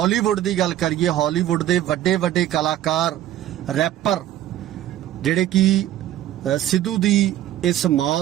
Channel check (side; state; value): left; quieter; 12.6 dB